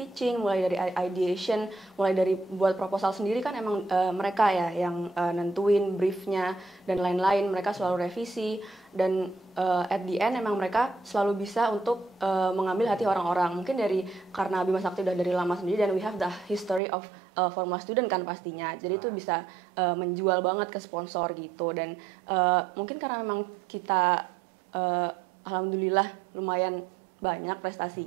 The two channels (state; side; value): drops out; left; at 16.8 s